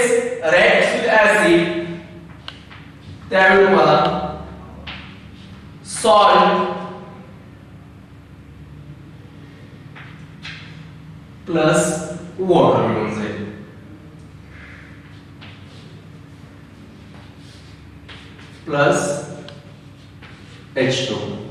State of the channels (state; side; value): identical; both; correlation 1.00